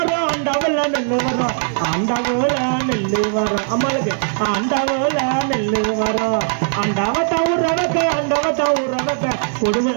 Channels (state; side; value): silent; left; 67 dB below the other